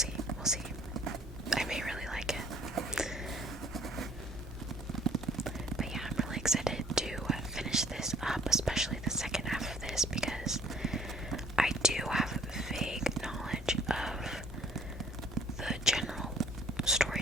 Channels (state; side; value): normal; both; correlation 0.54